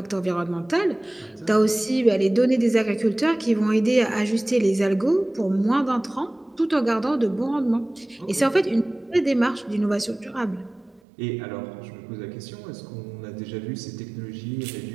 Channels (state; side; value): drops out; left; at 11.0 s